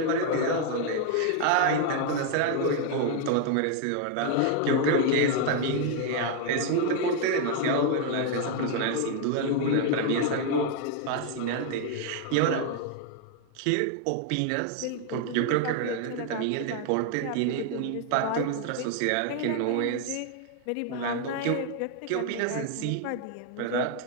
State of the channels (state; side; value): different; both; correlation 0.00